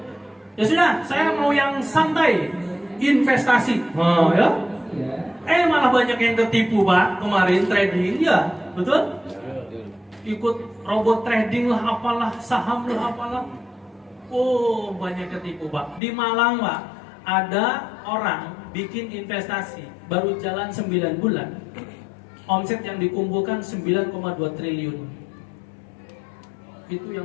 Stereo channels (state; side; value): drops out; right; at 16.0 s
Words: Ya sudah, saya mau yang santai, investasi. Ya. Malah banyak yang tertipu Pak kemarin trading ya, betul? Ikut robot trading lah, apalah, saham lah, apalah. Oh banyak ketipu Pak. Di Malang Pak, ada orang bikin investasi baru jalan 9 bulan, omset yang dikumpulkan 9,2 triliun. Itu